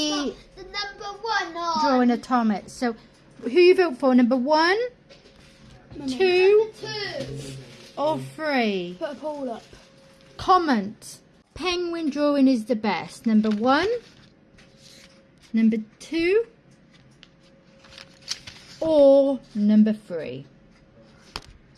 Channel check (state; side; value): identical; both; correlation 1.00